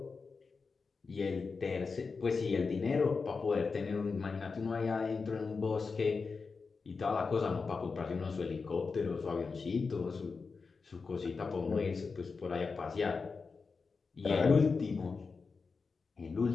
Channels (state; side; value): quieter; right; 4.7 dB